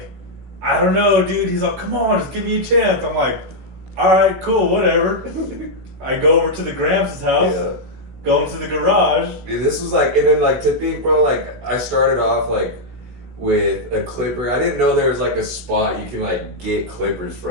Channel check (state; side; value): late; left; 17 ms